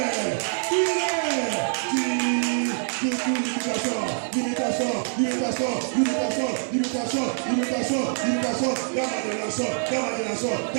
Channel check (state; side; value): silent; left; 62 dB below the other